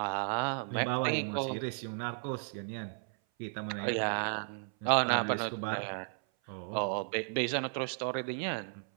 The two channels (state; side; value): silent; left; 55 dB below the other